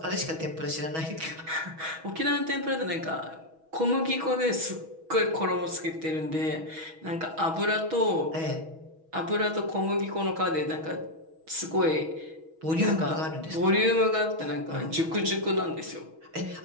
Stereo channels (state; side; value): late; left; 6.2 ms